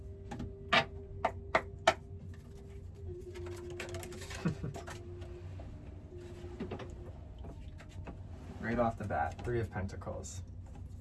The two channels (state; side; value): identical; both; correlation 1.00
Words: Right off the bat, 3 of Pentacles.